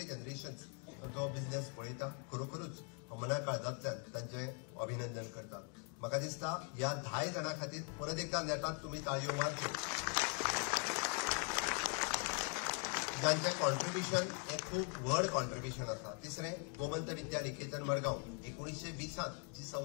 जनरेशन तो बिझनेस पळयता, खरोखरूच मना काळजांतल्यान तांचे अभिनंदन करता. म्हाका दिसता ह्या 10 जाणां खातीर परत एकदा नेटात तुमी ताळयो मारच्यो. जांचें कॉन्ट्रिब्युशन हें खूब व्हड कॉन्ट्रिब्युशन आसा. तिसरें, गोमंत विद्या निकेतन मडगांव 1920 जी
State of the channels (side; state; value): right; quieter; 37.6 dB